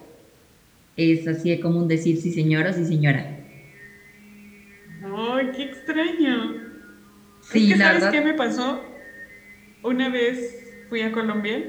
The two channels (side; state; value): both; identical; correlation 1.00